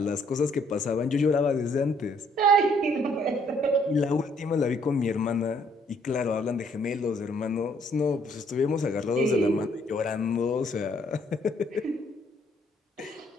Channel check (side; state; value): both; normal; correlation 0.65